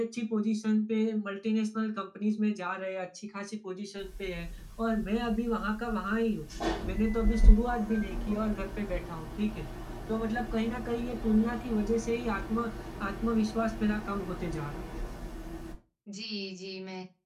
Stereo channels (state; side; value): identical; both; correlation 1.00